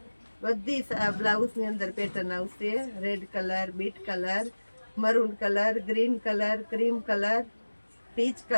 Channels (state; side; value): inverted; both; correlation -1.00